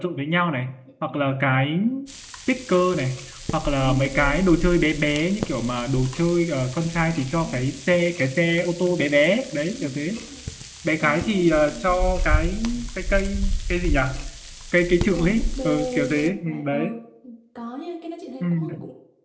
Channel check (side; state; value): both; identical; correlation 1.00